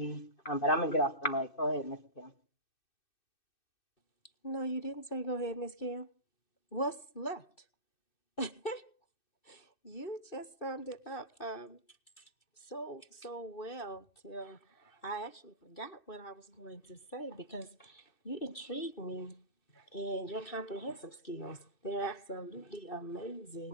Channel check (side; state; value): right; late; 2.6 ms